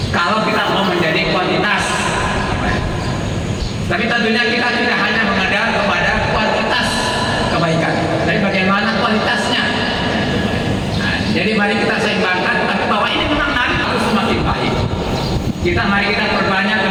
Kalau kita mau menjadi kuantitas, tapi tentunya kita tidak hanya mengadar kepada kuantitas kebaikan, tapi bagaimana kualitasnya. Nah, jadi mari kita seimbangkan, tapi bahwa ini memang harus semakin baik. Mari kita perbanyak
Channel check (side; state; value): both; identical; correlation 1.00